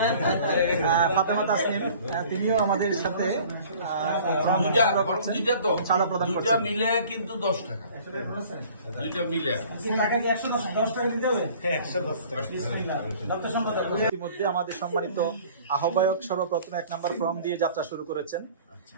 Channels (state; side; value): inverted; both; correlation -0.49